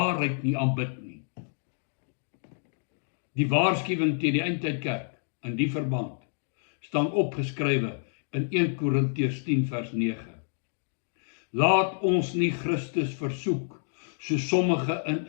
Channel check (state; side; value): silent; right; digital silence